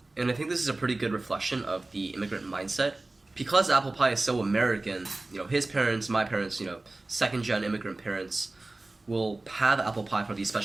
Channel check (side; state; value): left; quieter; 3.0 dB